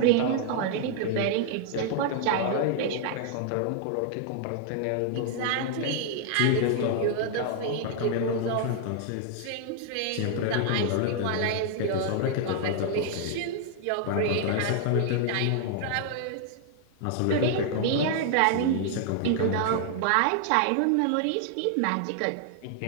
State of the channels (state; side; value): different; both; correlation 0.00